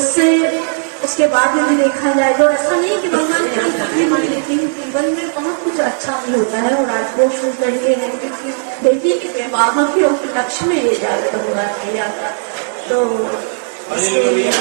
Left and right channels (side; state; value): left; silent; digital silence